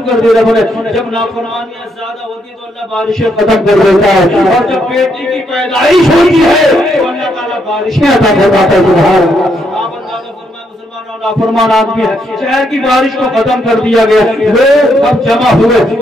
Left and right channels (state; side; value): normal; both; correlation 0.76